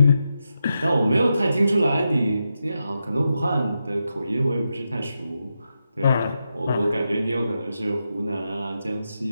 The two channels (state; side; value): inverted; both; correlation -0.87